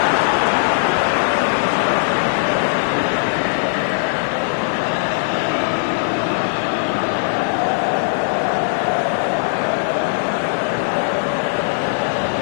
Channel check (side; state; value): right; silent; digital silence